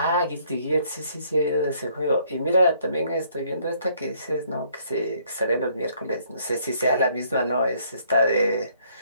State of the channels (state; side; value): inverted; both; correlation -0.65